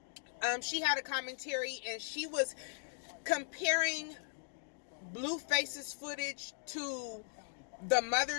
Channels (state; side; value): silent; right; digital silence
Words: She had a commentary, and she was comparing Blueface's footage to the